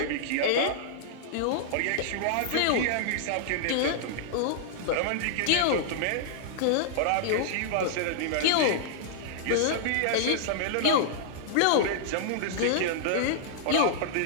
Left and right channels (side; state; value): both; different; correlation -0.01